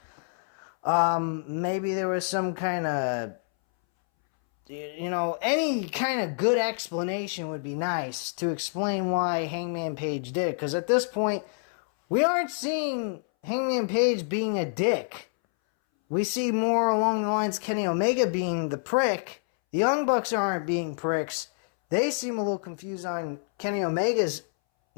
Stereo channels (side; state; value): right; silent; 60 dB below the other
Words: Maybe there was some kind of, you know, any kind of good explanation would be nice to explain why Hangman Page did it. Because at this point, we aren't seeing Hangman Page being a dick. We see more along the lines Kenny Omega being the prick. The Young Bucks aren't being pricks. They seem a little confused on Kenny Omega's,